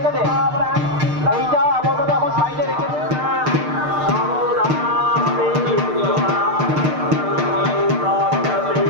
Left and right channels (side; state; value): left; late; 6.6 ms